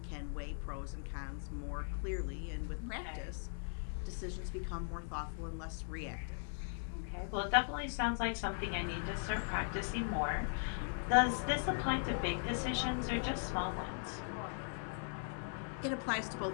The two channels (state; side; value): silent; right; digital silence